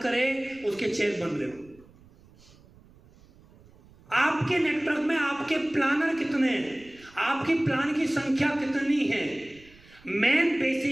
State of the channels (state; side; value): noise; right; rumble, 26 dB below the sound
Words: करे उसके चेक बन रहे हो। आपके नेटवर्क में आपके प्लानर कितने हैं, आपकी प्लान की संख्या कितनी है, मेन